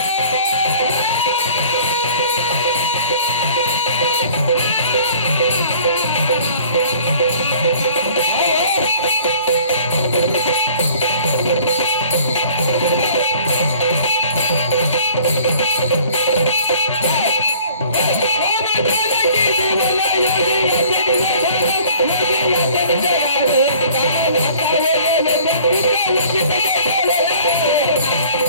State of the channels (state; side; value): inverted; both; correlation -0.52